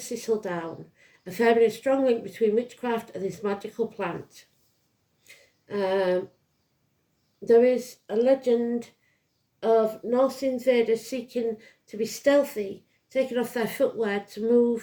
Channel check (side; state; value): both; identical; correlation 1.00